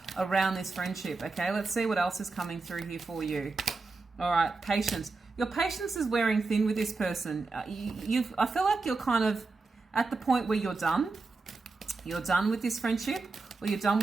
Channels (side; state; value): left; quieter; 3.9 dB